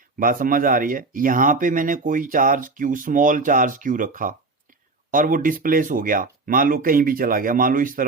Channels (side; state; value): left; quieter; 3.7 dB